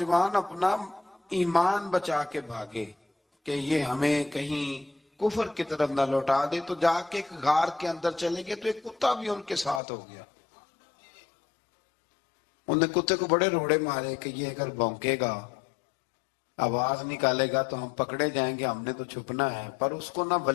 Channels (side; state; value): right; drops out; at 9.8 s